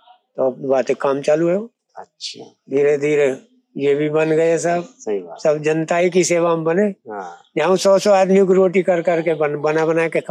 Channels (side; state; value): both; identical; correlation 1.00